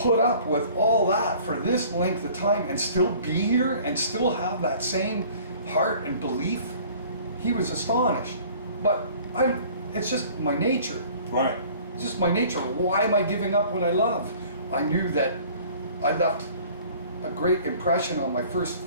up with all that for this length of time and still be here and still have that same heart and belief?" He was astonished. But it's just my nature. Right. It's just my nature. Why am I giving up what I love? I knew that I left a great impression on my first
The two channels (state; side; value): inverted; both; correlation -0.51